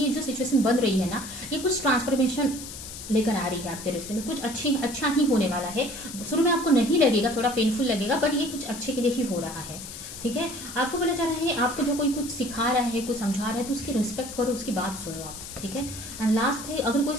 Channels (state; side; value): noise; left; hiss, 11 dB below the sound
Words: ये जो सिचुएशन बन रही है ना, ये कुछ ट्रांसफॉर्मेशन लेकर आ रही है आपके रिश्ते में, कुछ अच्छा ही होने वाला है। शुरू में आपको नहीं लगेगा, थोड़ा पेनफुल लगेगा, बट ये कुछ अच्छे के लिए ही हो रहा है, ठीक है। आपको बोला जा रहा है, आपको जो कोई कुछ सिखा रहा है, कुछ समझा रहा है, तो उसकी रिस्पेक्ट करो, उसकी बात सुनो आप, ठीक है। एंड लास्ट है, अगर कोई